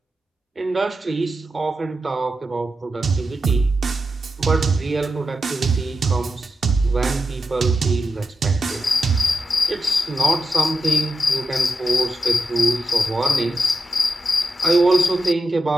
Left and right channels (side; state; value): both; normal; correlation 0.89